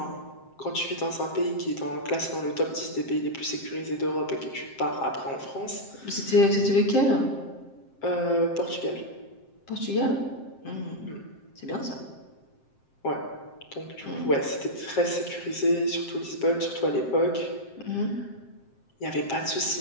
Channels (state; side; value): late; right; 7.6 ms